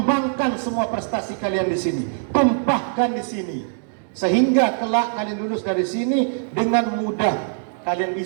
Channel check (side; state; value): left; silent; digital silence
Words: semua prestasi kalian di sini, tumpahkan di sini, sehingga kelak kalian lulus dari sini dengan mudah kalian